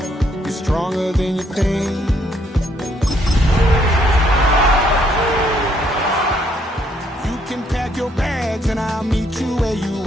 you're stronger than you think. You can pack your bags and I'll meet you where you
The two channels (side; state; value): both; normal; correlation 0.69